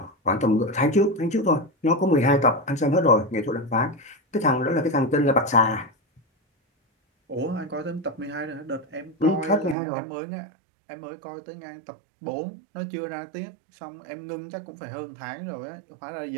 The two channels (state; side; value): drops out; left; at 9.8 s